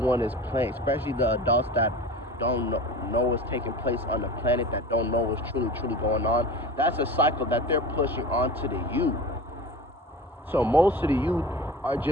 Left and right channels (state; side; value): normal; both; correlation 0.35